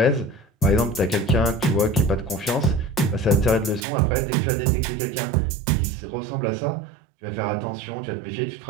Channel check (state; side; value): drops out; left; at 3.9 s